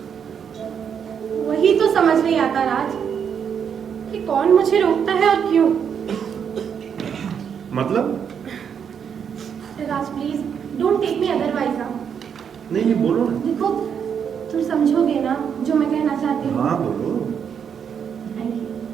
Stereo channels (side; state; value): left; quieter; 7.6 dB